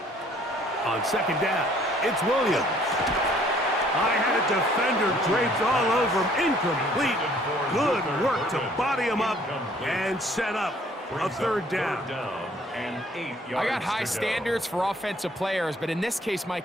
On 2nd down, it's Williams. I had a defender draped all over him. Incomplete. Good work to body him up and set up a 3rd down. And 8 yards. I got high standards for offensive players, but in this case,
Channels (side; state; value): both; normal; correlation 0.59